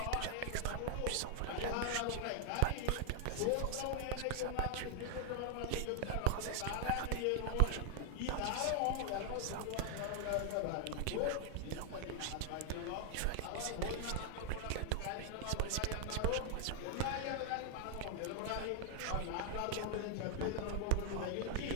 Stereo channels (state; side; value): different; both; correlation 0.00